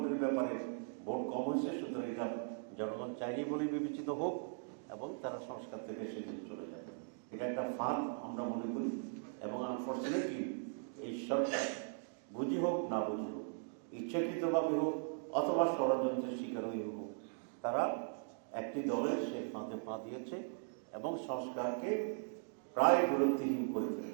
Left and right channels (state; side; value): silent; left; digital silence